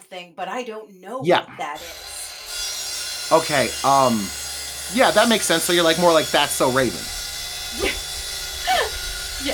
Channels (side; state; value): both; identical; correlation 1.00